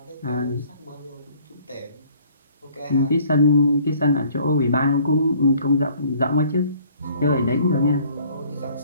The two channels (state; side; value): inverted; both; correlation -0.57